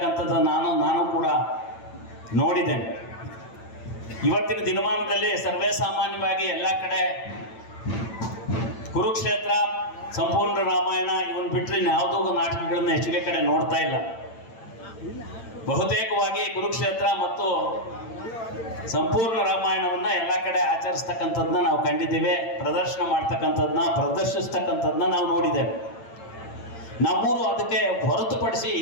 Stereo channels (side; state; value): right; late; 8.9 ms